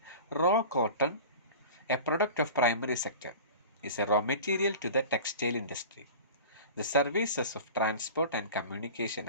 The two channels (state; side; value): inverted; both; correlation -0.37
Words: raw cotton, a product of primary sector, is a raw material to the textile industry. The services of transport and communication